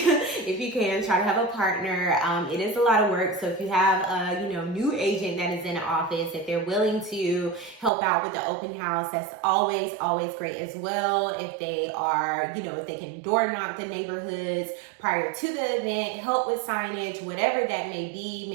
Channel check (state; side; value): drops out; left; at 7.9 s